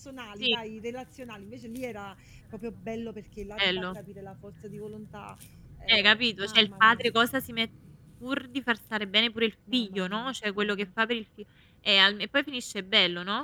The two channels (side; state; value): both; identical; correlation 1.00